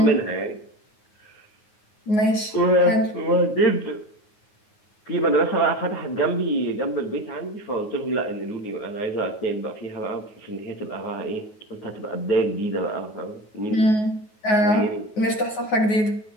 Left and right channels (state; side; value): late; right; 9.4 ms